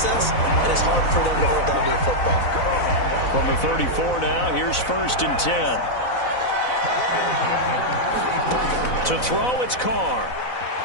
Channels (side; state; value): right; late; 4.0 ms